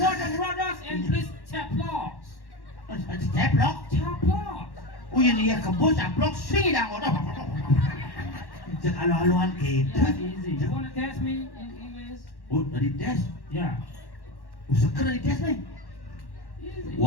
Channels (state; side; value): late; right; 1.1 ms